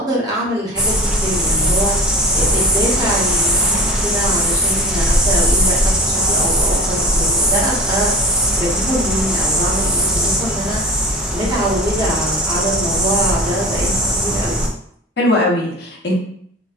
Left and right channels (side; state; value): both; normal; correlation 0.35